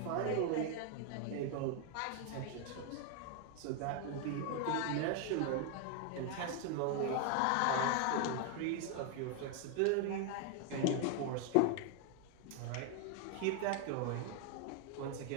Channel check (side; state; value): both; different; correlation 0.00